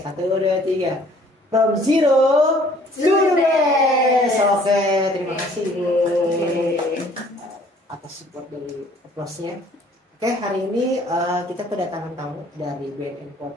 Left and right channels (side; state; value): both; normal; correlation 0.57